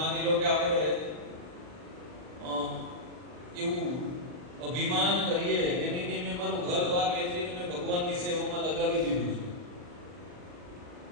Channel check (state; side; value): late; left; 39 ms